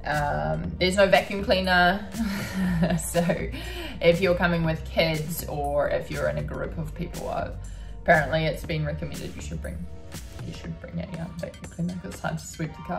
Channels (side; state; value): both; identical; correlation 1.00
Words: There's no vacuum cleaner. So if you're coming with kids or if you're in a group of people, apparently it's been recommended you should bring you should bring a vacuum cleaner because it's hard to sweep the